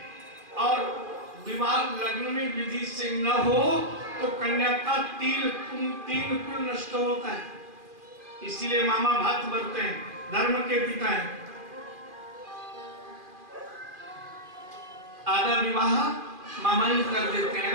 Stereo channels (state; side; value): late; left; 2.4 ms